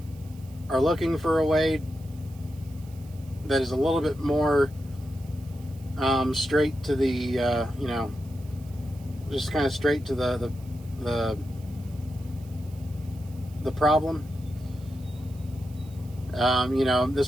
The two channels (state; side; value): noise; right; hiss, 26 dB below the sound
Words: are looking for a way that is a little bit more straight to the, you know, just kind of straight to the problem. You know,